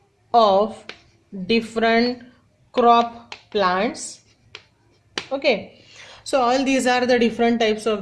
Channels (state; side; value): identical; both; correlation 1.00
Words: of different crop plants. Okay, so all these are the different types